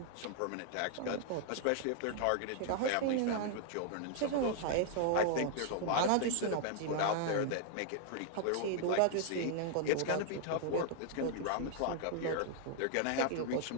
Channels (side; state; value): both; different; correlation 0.00